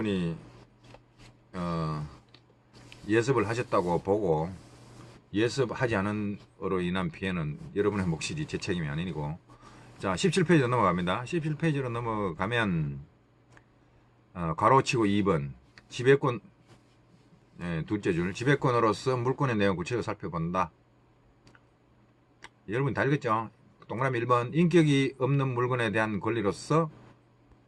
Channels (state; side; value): identical; both; correlation 1.00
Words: 예습을 하셨다고 보고, 예습하지 않은 으로 인한 피해는 여러분의 몫이지 제 책임이 아니고. 자, 17페이지로 넘어갑니다. 17페이지로 넘어가면, 가로치고 2번. 지배권, 둘째 줄. 지배권으로서 물권의 내용 구체적으로 살펴본다. 여러분 다 읽었죠? 동그라미 1번. 인격이 없는 물건에 대한 권리로서